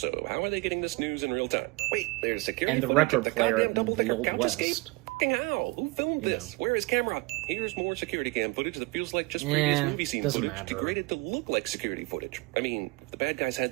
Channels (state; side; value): quieter; left; 24.8 dB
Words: how are they getting this news in real time? Wait, there's security And the footage of record player goddamn in double-decker the Old couch West. escape? Fucking how? Who filmed You this? know. Where is camera? Here's more security cam footage that feels like just previous movie scene doesn't footage matter. degraded to look like security footage. I mean, if the bad guys had